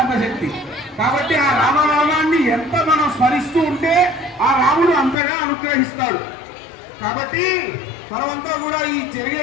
శక్తి. కాబట్టి ఆ రామనామాన్ని ఎంత మనం స్మరిస్తూ ఉంటే ఆ రాముడు అంతగా అనుగ్రహిస్తాడు. కాబట్టి మనమంతా కూడా ఈ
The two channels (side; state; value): right; drops out; at 5.2 s